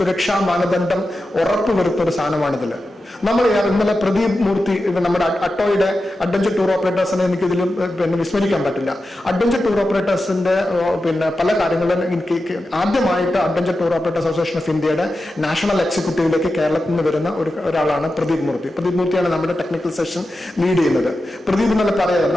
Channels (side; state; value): both; normal; correlation 0.91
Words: മാനദണ്ഡം ഉറപ്പുവരുത്തുന്ന ഒരു സാധനമാണിതിൽ. നമ്മൾ ഇന്നലെ പ്രദീപ് മൂർത്തി നമ്മുടെ ATOAIയുടെ അഡ്വഞ്ചർ ടൂർ ഓപ്പറേറ്റേഴ്സിനെ എനിക്ക് ഇതിൽ വിസ്മരിക്കാൻ പറ്റില്ല. അഡ്വഞ്ചർ ടൂർ ഓപ്പറേറ്റേഴ്സിന്റെ പല കാര്യങ്ങളും ആദ്യമായിട്ട് adventure tour operators association of ഇന്ത്യയുടെ നാഷണൽ എക്സിക്യൂട്ടീവിലേക്ക് കേരളത്തിൽ നിന്ന് വരുന്ന ഒരാളാണ് പ്രദീപ് മൂർത്തി. പ്രദീപ് മൂർത്തിയാണ് നമ്മുടെ ടെക്നിക്കൽ സെഷൻ ലീഡ് ചെയ്യുന്നത്. പ്രദീപ് എന്നല്ല പറയാതെ